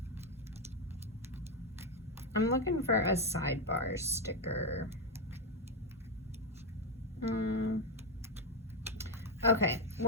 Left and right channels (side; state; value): both; normal; correlation 0.07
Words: I'm looking for a sidebar sticker. Okay,